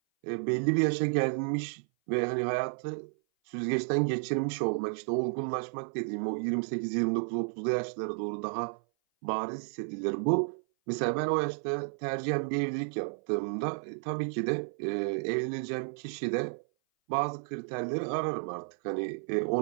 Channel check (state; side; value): silent; left; 56 dB below the other